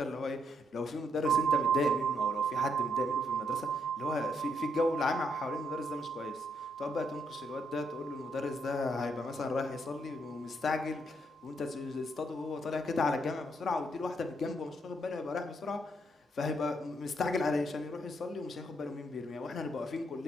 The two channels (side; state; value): both; normal; correlation 0.75